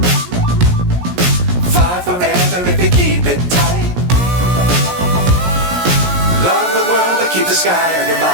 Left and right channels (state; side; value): late; left; 17 ms